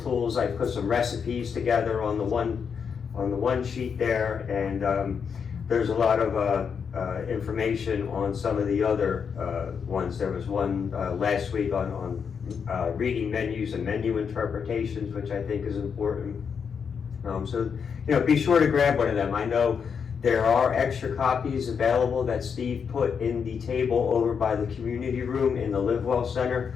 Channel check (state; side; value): quieter; right; 6.6 dB